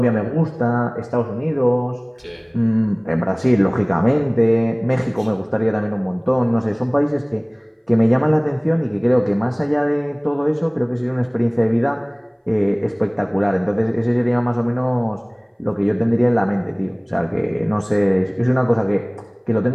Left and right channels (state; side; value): identical; both; correlation 1.00